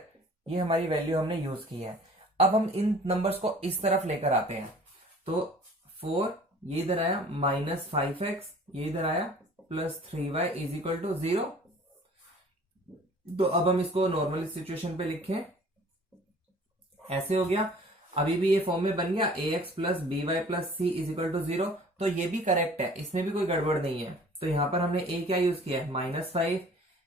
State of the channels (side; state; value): both; normal; correlation 0.49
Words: ये हमारी वैल्यू हमने यूज की है। अब हम इन नंबर्स को इस तरफ लेकर आते हैं, तो 4 ये इधर आया, -5x ये इधर आया, plus 3y is equal to 0। तो अब हम इसको नॉर्मल सिचुएशन पे लिखें, ऐसे हो गया। अभी भी ये फॉर्म में बन गया, ax plus by plus c is equal to 0। तो ये भी करेक्ट है, इसमें भी कोई गड़बड़ नहीं है। तो यहां पर हमने a क्या यूज किया है -5,